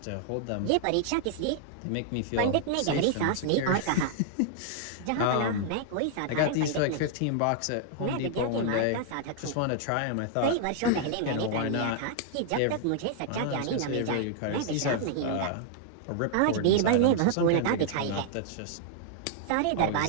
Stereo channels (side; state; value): both; different; correlation -0.01